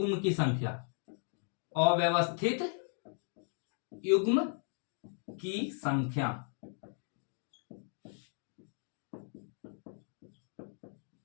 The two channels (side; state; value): right; silent; 54 dB below the other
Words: की संख्या, अव्यवस्थित युग्म की संख्या।